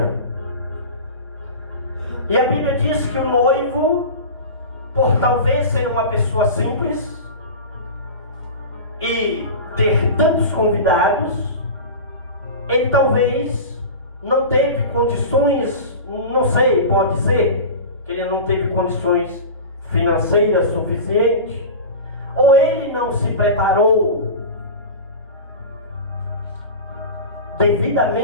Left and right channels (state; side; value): inverted; both; correlation -0.30